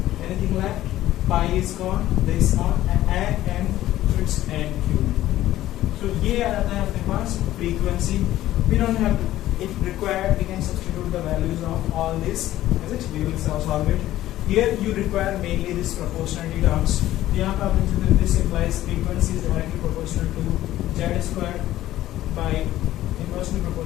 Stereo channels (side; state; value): right; quieter; 14.3 dB